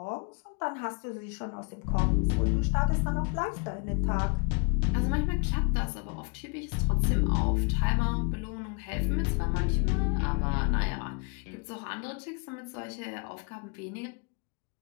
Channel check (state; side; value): quieter; right; 34.5 dB